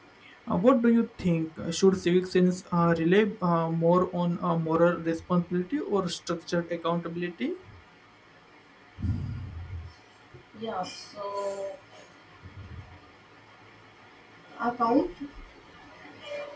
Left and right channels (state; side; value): identical; both; correlation 1.00